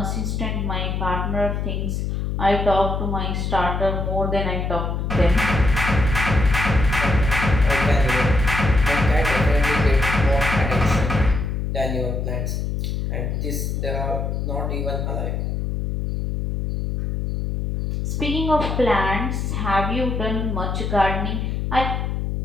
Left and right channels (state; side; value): noise; left; hum, 1 dB below the sound